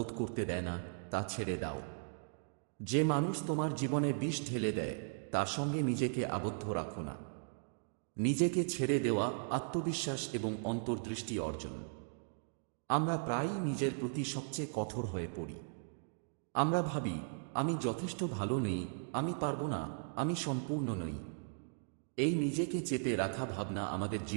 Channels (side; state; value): left; silent; digital silence